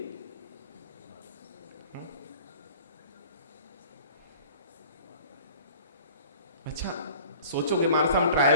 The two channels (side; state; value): both; inverted; correlation -0.46